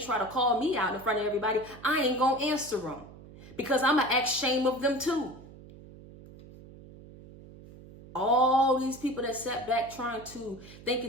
to call me out in front of everybody, I ain't going to answer them because I'm going to act shame of them too. All these people that sat back thinking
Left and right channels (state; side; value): noise; right; hum, 19 dB below the sound